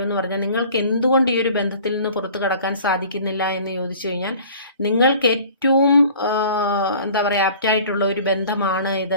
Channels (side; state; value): both; inverted; correlation -0.48